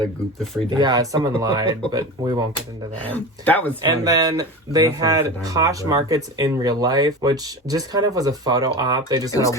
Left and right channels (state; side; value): normal; both; correlation 0.29